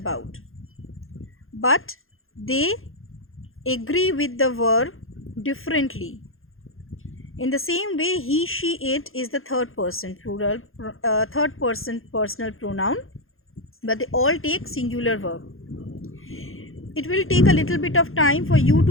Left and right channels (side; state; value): right; late; 0.60 ms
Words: But they agree with the verb differently. In the same way, he, she, it is the third person plural, third person personal pronoun, but they all take singular verb. It will take a little bit of time for you